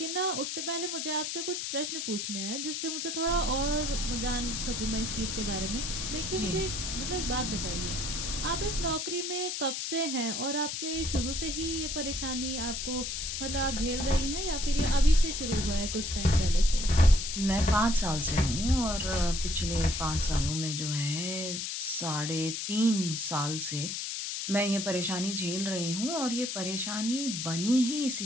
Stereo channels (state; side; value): noise; left; hiss, 3 dB below the sound